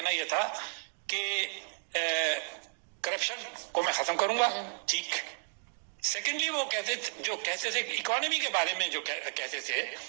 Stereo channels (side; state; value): left; silent; digital silence